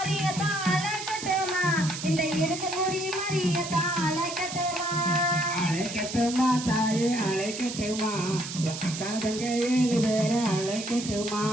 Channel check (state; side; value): noise; right; hiss, 8 dB below the sound